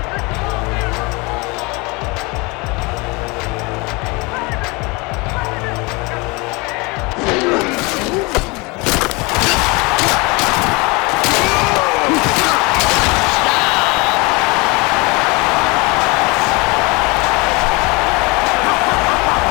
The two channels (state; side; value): quieter; right; 26.6 dB